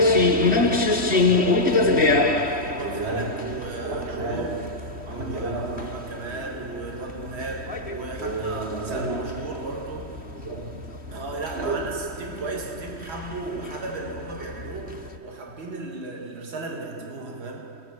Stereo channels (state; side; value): late; left; 3.1 ms